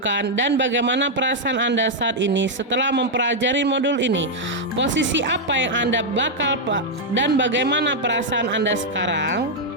dan bagaimana perasaan Anda saat ini setelah mempelajari modul ini? Posisi apa yang Anda bakal dan bagaimana perasaan Anda sekarang?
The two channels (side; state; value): both; normal; correlation -0.02